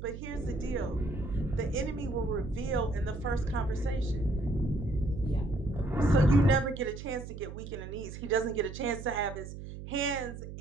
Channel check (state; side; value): noise; right; hum, 10 dB below the sound